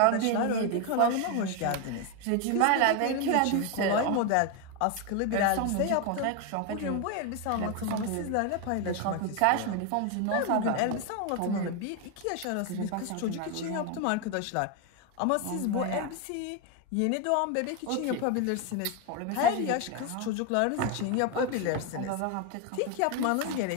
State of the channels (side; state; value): both; different; correlation 0.01